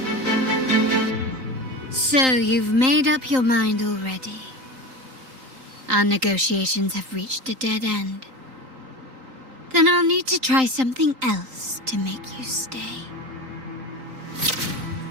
So you've made up your mind already. Our negotiations have reached a dead end. Then I'll need to try something else to make you stay.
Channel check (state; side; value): late; left; 3.9 ms